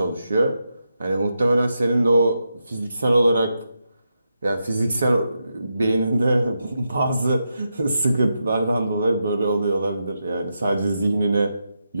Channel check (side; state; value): both; inverted; correlation -0.86